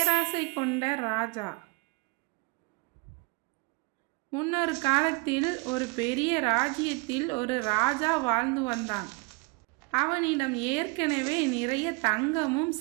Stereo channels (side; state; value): left; quieter; 28.8 dB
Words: கொண்ட ராஜா. முன்னொரு காலத்தில் ஒரு பெரிய ராஜ்யத்தில் ஒரு ராஜா வாழ்ந்து வந்தான். அவனிடம் ஏற்கனவே நிறைய தங்கமும்